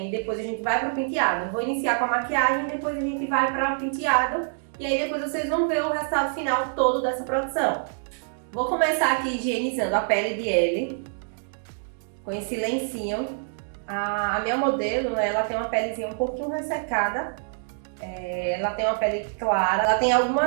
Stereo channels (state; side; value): silent; left; digital silence